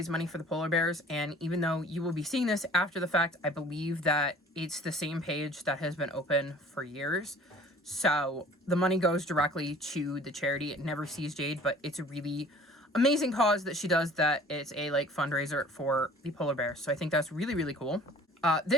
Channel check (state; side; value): normal; both; correlation 0.49